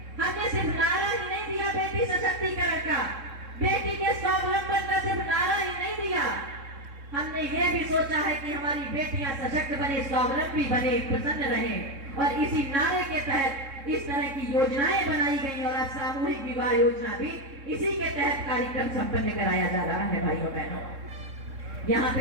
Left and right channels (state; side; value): late; left; 3.6 ms